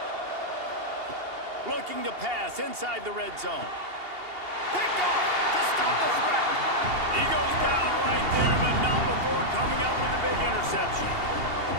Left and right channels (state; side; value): late; left; 2.8 ms